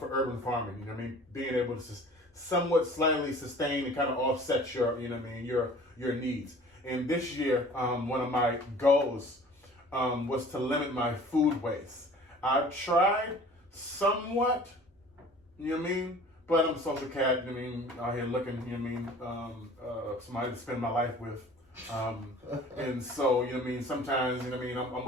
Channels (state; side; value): normal; both; correlation 0.47